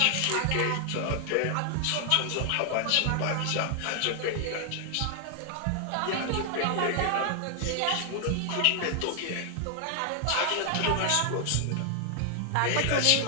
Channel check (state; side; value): different; both; correlation 0.00